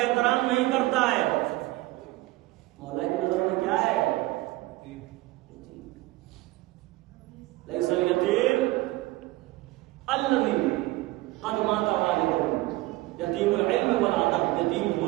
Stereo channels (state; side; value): quieter; left; 19.3 dB